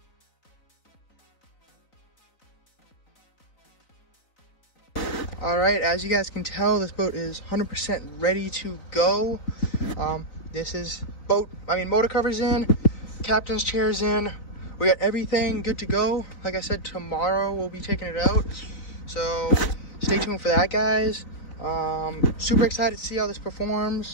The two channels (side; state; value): right; late; 4.0 ms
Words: All right, as you guys can tell, this boat is 100% ready to go. This is motor covers in, captain's chair's in. We got everything good to go. Like I said, tomorrow we'll be taking it out. So stay tuned for that, guys. Super excited to see how this